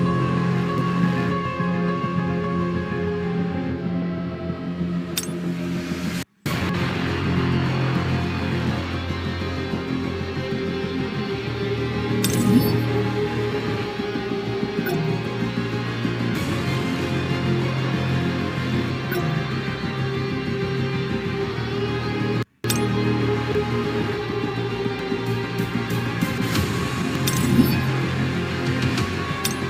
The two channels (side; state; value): both; identical; correlation 1.00